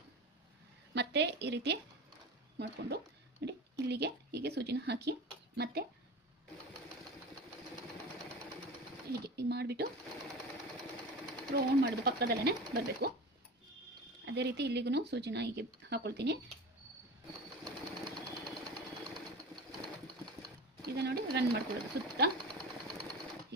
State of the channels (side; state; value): both; normal; correlation 0.31